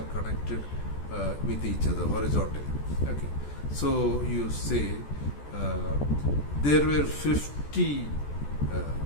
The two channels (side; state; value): right; late; 14 ms